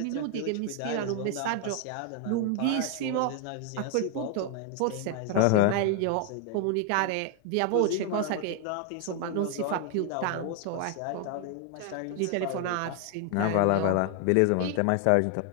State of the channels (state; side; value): different; both; correlation 0.00